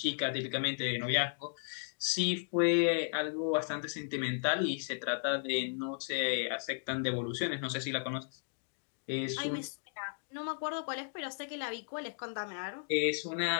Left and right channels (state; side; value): silent; right; digital silence